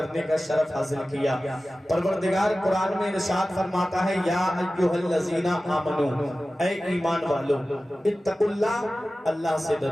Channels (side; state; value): both; normal; correlation 0.96